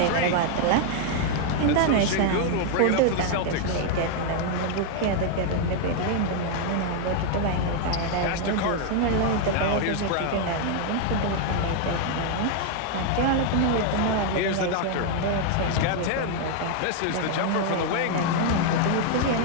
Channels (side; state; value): both; different; correlation 0.00